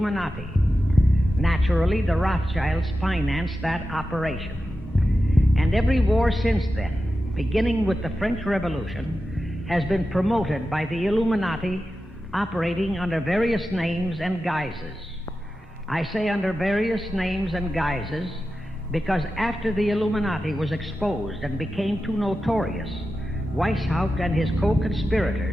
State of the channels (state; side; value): normal; both; correlation 0.92